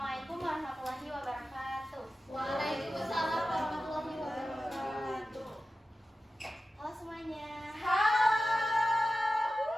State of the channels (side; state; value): both; normal; correlation 0.94